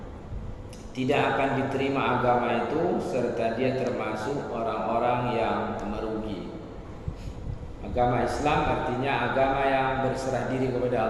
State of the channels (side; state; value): both; identical; correlation 1.00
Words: tidak akan diterima agama itu, serta dia termasuk orang-orang yang merugi. Agama Islam artinya agama yang berserah diri kepada